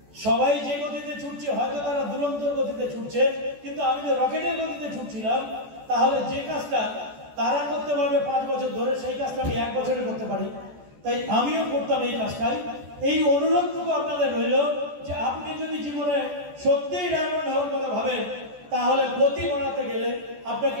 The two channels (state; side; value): late; left; 14 ms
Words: সবাই যে গতিতে ছুটছে, হয়তো তারা দুরন্তর গতিতে ছুটছে, কিন্তু আমি যে রকেটের গতিতে ছুটছিলাম, তাহলে যে কাজটা তারা করতে পারবে 5 বছর ধরে, সেই কাজটা আমি 1 বছরে করতে পারি। তাই আমিও করতাম এই কাজটাই। এই অনুরোধটুকু আপনাদের রইল যে আপনি যদি জীবনে সত্যিই ডায়মন্ড হওয়ার কথা ভাবেন, তাহলে গতি বাড়াতে গেলে আপনাকে